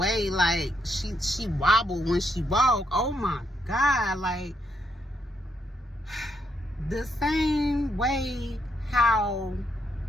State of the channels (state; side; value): normal; both; correlation 0.78